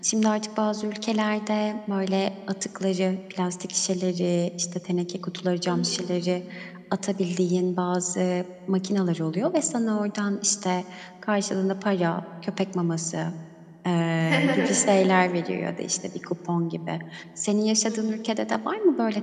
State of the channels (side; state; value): both; identical; correlation 1.00